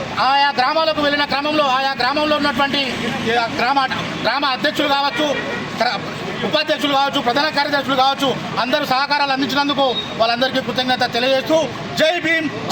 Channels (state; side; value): identical; both; correlation 1.00